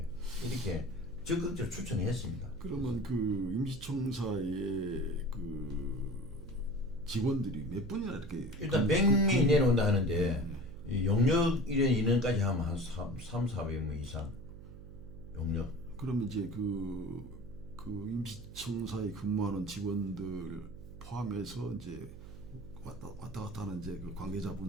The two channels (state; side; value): noise; right; hum, 15 dB below the sound